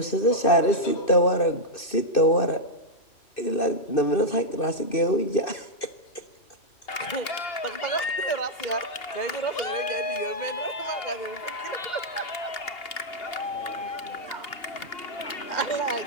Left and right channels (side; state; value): right; late; 2.8 ms